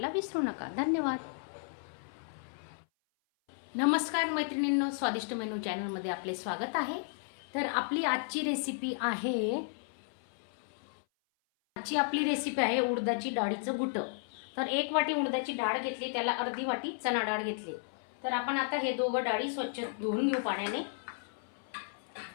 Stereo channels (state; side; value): silent; right; 55 dB below the other